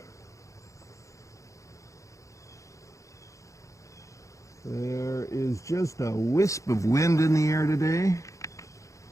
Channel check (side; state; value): right; late; 0.15 ms